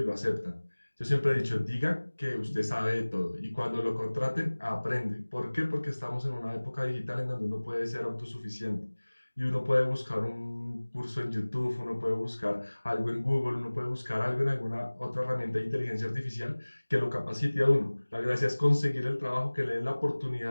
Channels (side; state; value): both; inverted; correlation -1.00